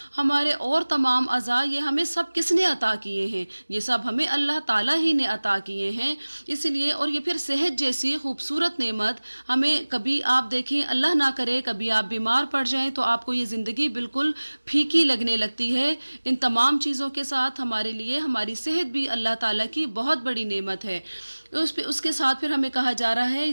हमारे और तमाम अज़ा, ये हमें सब किसने अता किए हैं? ये सब हमें अल्लाह ताला ही ने अता किए हैं। इसलिए और ये फिर सेहत जैसी खूबसूरत नेमत हमें, कभी आप देखें अल्लाह ना करे कभी आप बीमार पड़ जाएं तो आपको ये ज़िंदगी बिल्कुल फीकी लगने लगती है। इन तमाम चीज़ों के साथ हमारे लिए हमारी सेहत भी अल्लाह ताला की बहुत बड़ी नेमत है। उसके साथ फिर हमें कहा जा रहा है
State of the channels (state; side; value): inverted; both; correlation -1.00